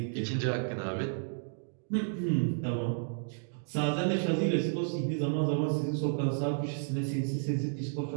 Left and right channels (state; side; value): silent; left; digital silence